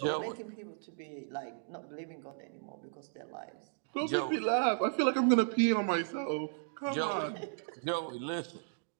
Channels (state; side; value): silent; left; digital silence